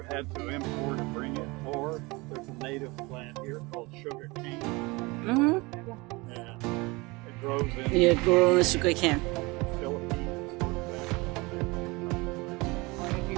had to import or bring it, or there's a native plant here called sugar cane, Mm-hmm. and it grows in Yeah, grow sugar cane. the Philippines.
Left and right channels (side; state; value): left; quieter; 24.6 dB